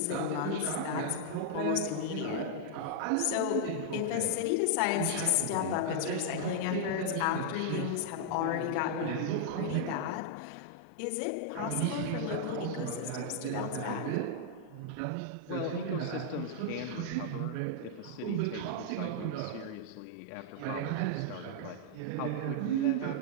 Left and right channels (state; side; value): different; both; correlation -0.01